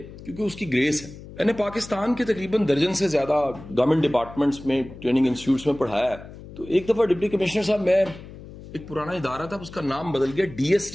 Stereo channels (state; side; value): noise; left; hum, 16 dB below the sound